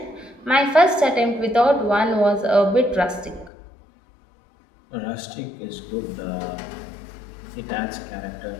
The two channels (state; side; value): drops out; right; at 3.5 s